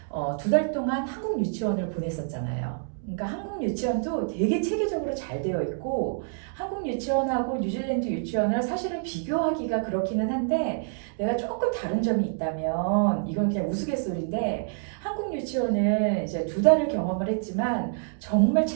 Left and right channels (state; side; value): silent; left; digital silence